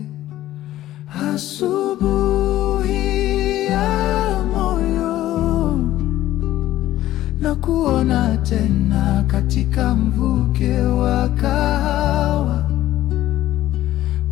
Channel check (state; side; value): quieter; right; 14.2 dB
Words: Asubuhi ya moyo, na kuona tena katika mvuke wa kahawa,